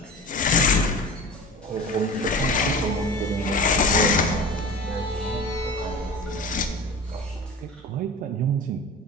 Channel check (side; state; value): both; normal; correlation 0.35